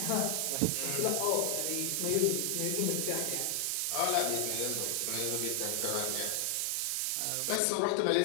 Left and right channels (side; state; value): both; different; correlation 0.00